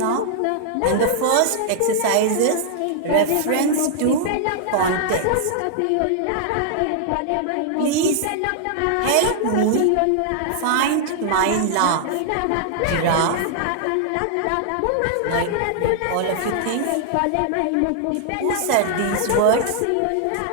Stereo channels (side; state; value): both; different; correlation -0.01